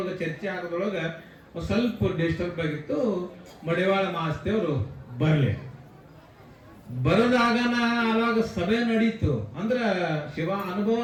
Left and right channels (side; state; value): both; identical; correlation 1.00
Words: ಚರ್ಚೆ ಆಗೋದ್ರೊಳಗ ಒಂದ್ ಸ್ವಲ್ಪ ಡಿಸ್ಟರ್ಬ್ ಆಗಿತ್ತು. ಮಡಿವಾಳ ಮಾಸ್ತೇವ್ರು ಬರದಾಗನ ಅವಾಗ ಸಭೆ ನಡೀತು, ಅಂದ್ರ ಶಿವ ಅನುಭವ